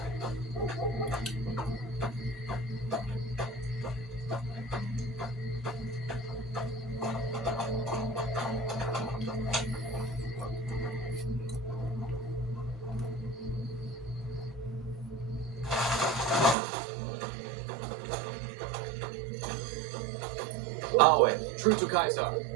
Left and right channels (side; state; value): left; drops out; at 16.6 s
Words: Awe, true to Kaiser.